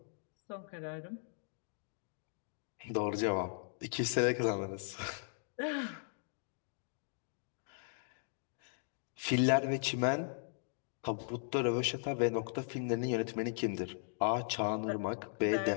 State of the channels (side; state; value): right; silent; digital silence